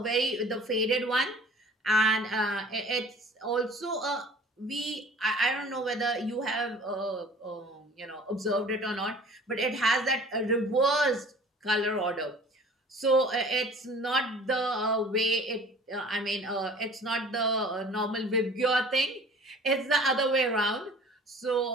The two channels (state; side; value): normal; both; correlation 0.47